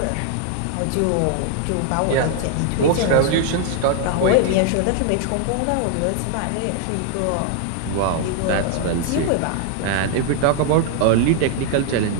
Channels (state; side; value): different; both; correlation 0.00